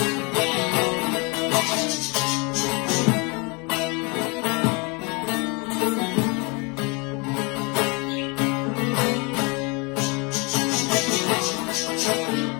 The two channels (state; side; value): quieter; right; 30.3 dB